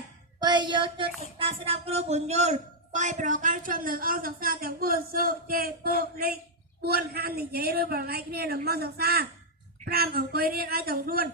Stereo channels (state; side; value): normal; both; correlation -0.04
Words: 2យកចិត្តសិក្សាស្ដាប់គ្រូបញ្យល់3ប្រកាន់ជាប់នៅអង្គសិក្សាទាំង4សុជេពុលេខ4ហាមនិយាយឬប្រឡែកគ្នានៅមកសិក្សា5អង្គុយរៀនឲ្យទាំងខ្លួន